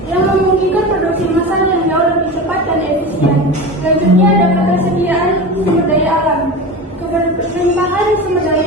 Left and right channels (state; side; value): normal; both; correlation 0.28